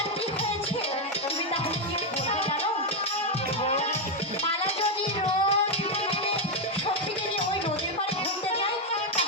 কি হয়েছে, তুমি তাহলে কি বলবে জানো? মালা যদি রোজ সখীকে নিয়ে ওই নদীর পাড়ে ঘুরতে যায়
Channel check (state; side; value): normal; both; correlation 0.03